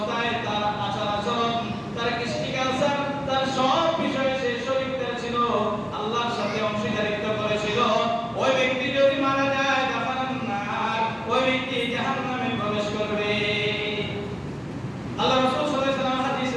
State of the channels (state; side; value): identical; both; correlation 1.00